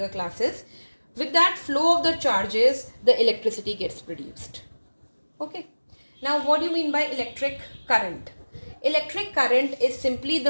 classes. With that flow of the charges, the electricity gets produced. Okay. Now, what do you mean by electric current? Electric current is simply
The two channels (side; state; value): both; inverted; correlation -1.00